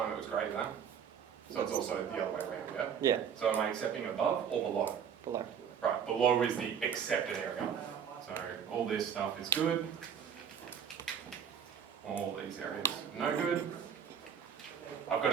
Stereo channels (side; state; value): left; quieter; 7.9 dB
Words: it was greater than. So it's also the other way around, yeah? Yeah, So am I accepting above or below? below. Right, below is the accepted area. So all this stuff is good. All these areas no good. I've